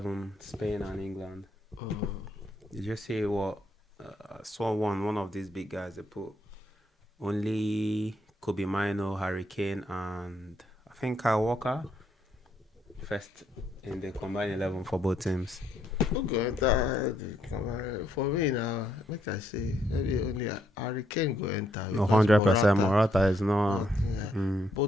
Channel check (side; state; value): both; normal; correlation 0.73